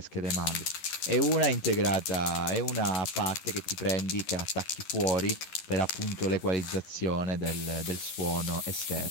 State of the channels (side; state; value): right; late; 11 ms